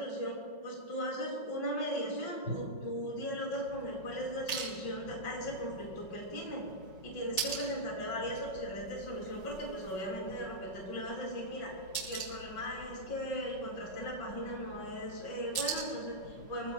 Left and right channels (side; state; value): right; late; 5.4 ms